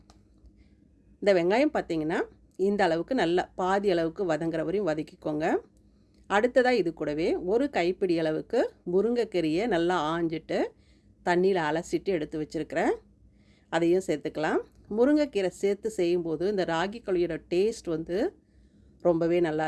இந்த வெங்காயம் பார்த்திங்கன்னா இந்த அளவுக்கு நல்லா பாதி அளவுக்கு வதங்குற வரையும் வதக்கிக்கோங்க. அடுத்ததாக இது கூடவே ஒரு கைப்பிடி அளவுக்கு முருங்கைக்கீரையை நல்லா ஆஞ்சிட்டு தண்ணியில் அலசிட்டு எடுத்து வச்சுருக்கிறேன், அதையும் சேர்த்துக்கலாம். முருங்கைக்கீரை சேர்த்து செய்யும்போது இந்த ராகி களியோட டேஸ்ட் ரொம்பவே நல்லா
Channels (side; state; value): both; identical; correlation 1.00